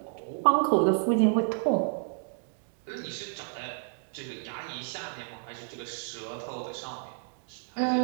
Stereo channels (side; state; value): left; silent; digital silence